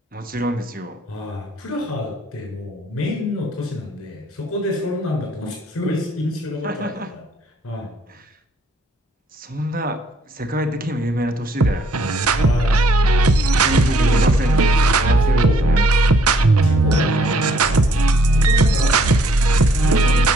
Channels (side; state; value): both; normal; correlation 0.65